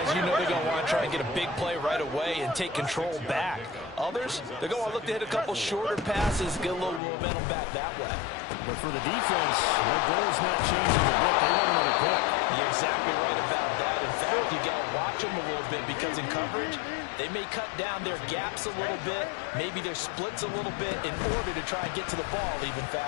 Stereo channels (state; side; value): drops out; right; at 7.0 s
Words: you know they're going to want to try and get a big play right away and take control back. Others, they're going to look to hit a couple shorter passes, get a little momentum back that way. But for the defense, their goal's not changing a bit. They want another pick. You're exactly right about that. In fact, you've got to watch them a little bit because in coverage, they may cut down their gaps a little bit, maybe their splits a little bit in order to try and get to the ball even